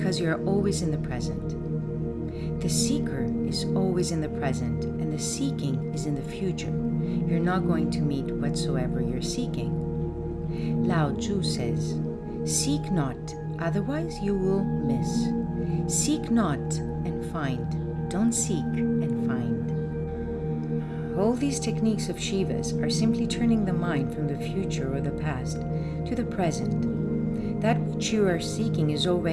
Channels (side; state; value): both; identical; correlation 1.00